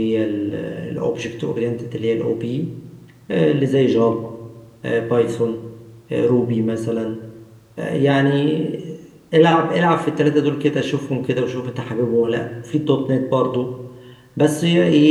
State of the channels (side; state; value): both; identical; correlation 1.00